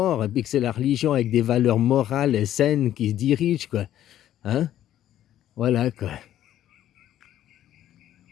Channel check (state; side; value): quieter; right; 12.0 dB